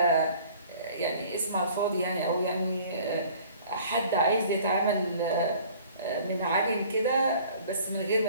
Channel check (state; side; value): inverted; both; correlation -0.51